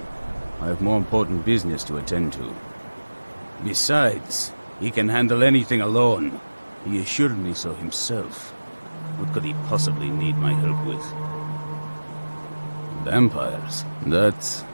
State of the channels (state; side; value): inverted; both; correlation -1.00